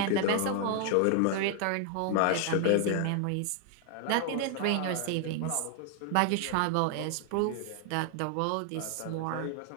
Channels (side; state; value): both; different; correlation 0.00